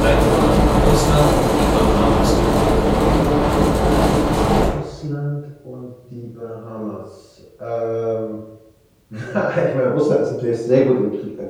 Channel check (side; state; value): both; identical; correlation 1.00